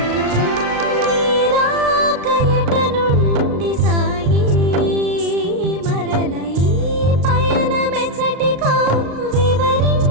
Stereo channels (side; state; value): left; late; 35 ms